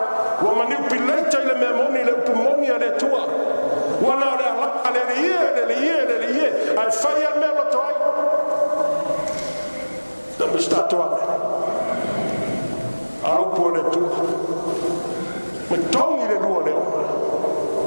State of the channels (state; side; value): inverted; both; correlation -1.00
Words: Wa mani upileita ile memoni le upumoni ale tua. Wana le ala le ie. Ai fai al melo toi. Da mi sta tua. Au po le tua. Me tongi le lua le ona.